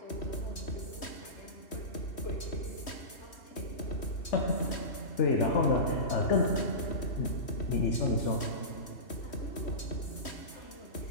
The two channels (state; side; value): late; right; 3.1 ms